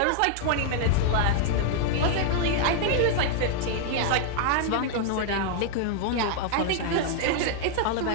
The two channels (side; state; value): both; different; correlation 0.00